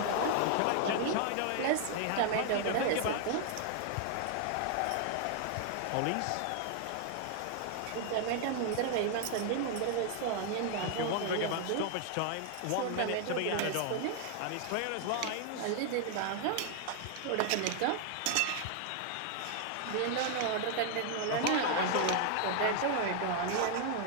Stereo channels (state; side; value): different; both; correlation 0.00